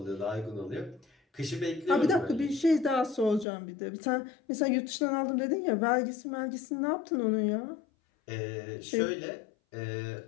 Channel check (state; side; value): drops out; right; at 3.5 s